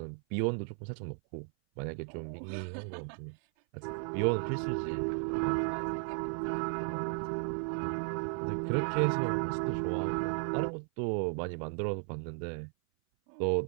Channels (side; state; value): left; silent; 55 dB below the other